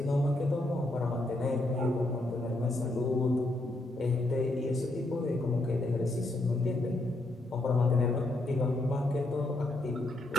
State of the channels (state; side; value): normal; both; correlation 0.78